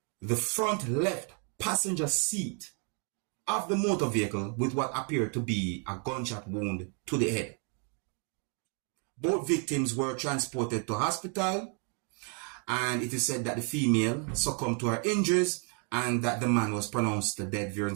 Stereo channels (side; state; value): left; quieter; 39.6 dB